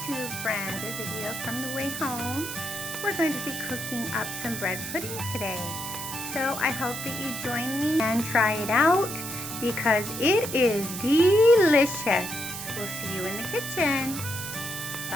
friend, a video from the way home. We're going to be cooking up some bread pudding today. So I hope that you join me and try it out because it is delicious. We'll see you in the kitchen.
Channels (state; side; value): noise; right; hiss, 7 dB below the sound